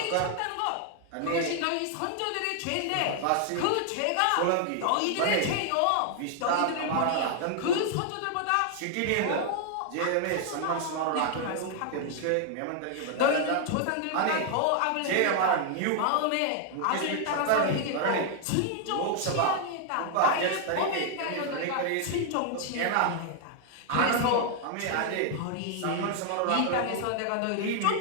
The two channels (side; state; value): both; different; correlation 0.00